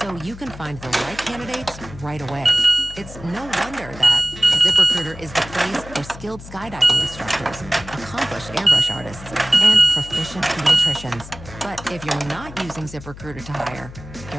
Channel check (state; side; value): noise; left; hum, 15 dB below the sound